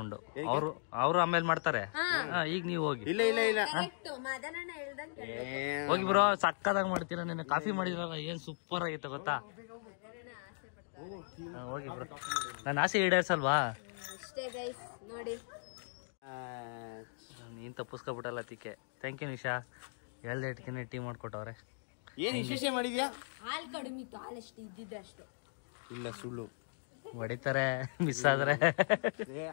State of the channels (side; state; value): right; silent; digital silence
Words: ಅವರು ಆಮೇಲೆ ಮಾಡ್ತಾರೆ. ಈಗ ನೀವು ಹೋಗಿ. ಇಲ್ಲ ಹೋಗಿ ಬ್ರೋ. ಸಕ್ಕದಾಗ ಮಾಡ್ತೀರಾ. ನಿನ್ನೆ ಕಾಫಿ ಮಾಡಿದ್ರಲ್ಲ, ಏನ್ ಸೂಪರ್ ಆಗಿತ್ತು ಗೊತ್ತಾ? ಹೋಗಿ ಬ್ರೋ. ನನ್ನ ಆಸೆ ಈಡೇರ್ಸಲ್ವಾ? ನೀನ್ ತಪ್ಪಿಸ್ಕೊಬಿಟ್ಟಲ್ಲ ತಿಕ್ಕೆ. Thank you Nisha. ಹೇಳ್ದೆ ಟೀ ಮಾಡ್ಕೊಟ್ಟವ್ರೆ. ಏನ್ ವಿಶೇಷ ಮಾಡಿದ್ಯಾ? ಹಾಲ್ ಕಡಿಮೆ ಇತ್ತು. ಹಾಲಷ್ಟು ಇದ್ದಿದ್ದೆ ಅಷ್ಟು. ಇಲ್ಲ ಸುಳ್ಳು ಹೊಡಿತಾರೆ ಮಿಸ್ ಆದ್ರೆ.